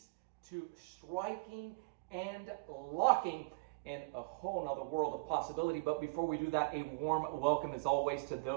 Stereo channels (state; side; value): quieter; left; 30.2 dB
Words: to striking and locking and a whole nother world of possibility. But before we do that, a warm welcome as always to